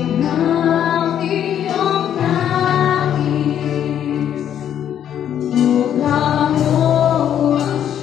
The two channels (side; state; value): right; quieter; 9.9 dB